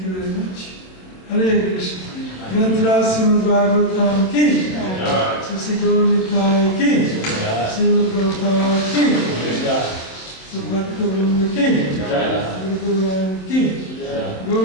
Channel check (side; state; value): right; late; 27 ms